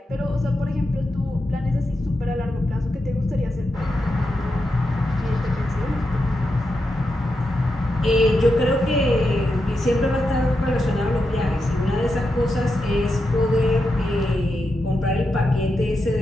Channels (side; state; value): both; normal; correlation 0.87